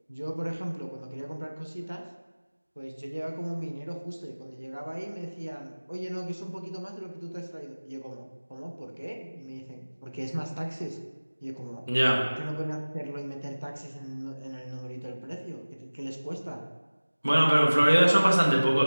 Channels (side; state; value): both; inverted; correlation -1.00